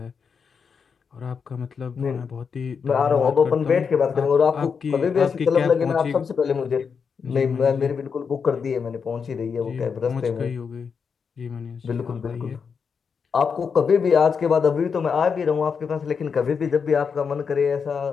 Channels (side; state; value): right; quieter; 6.0 dB